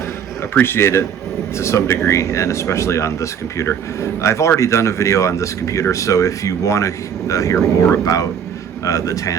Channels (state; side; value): quieter; left; 8.0 dB